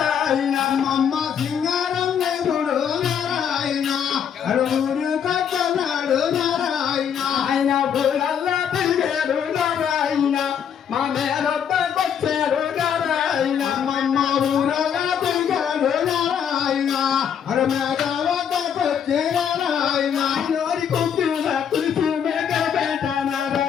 అమ్మమ్మ సింగారం దేవుడు నారాయణ ఊరు కట్టనాడు నారాయణ ఆయన ఊరల్లా తిరిగాడు నారాయణ మా మేరొద్దకొచ్చారు నారాయణ అమ్మమ్మ ఊరల్లా తిరిగాడు నారాయణ మేఘవద్దకొచ్చే నారాయణ నోరి కొట్టిన తులసి మేఘపేట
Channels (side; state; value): right; quieter; 8.2 dB